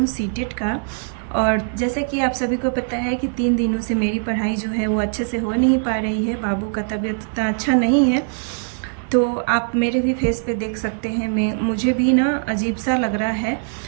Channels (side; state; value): left; silent; 65 dB below the other